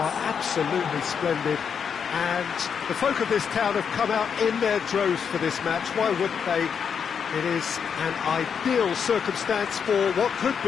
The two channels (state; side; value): quieter; right; 7.0 dB